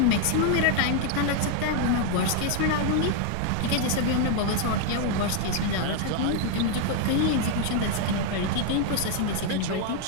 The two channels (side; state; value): both; different; correlation 0.00